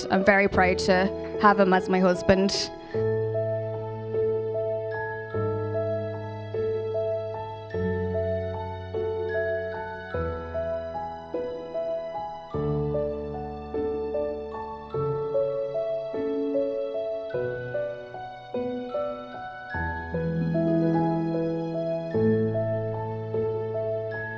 I'm very proud to have him as my husband.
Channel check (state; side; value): identical; both; correlation 1.00